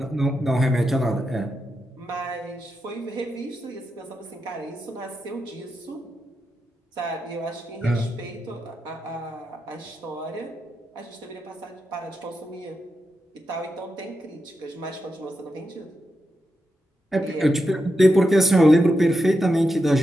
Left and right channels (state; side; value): normal; both; correlation 0.87